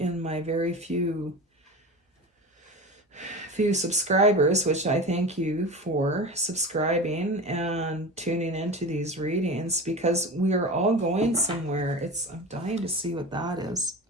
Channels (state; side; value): normal; both; correlation 0.30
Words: my very few subscribers, which I thank you for subscribing and tuning into these readings, because we are all going somewhere. I'm dying to see what that is.